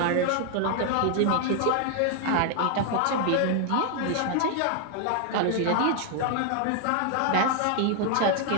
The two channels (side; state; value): both; different; correlation 0.00